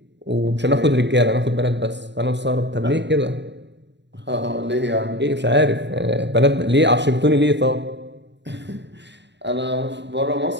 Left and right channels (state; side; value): late; left; 0.52 ms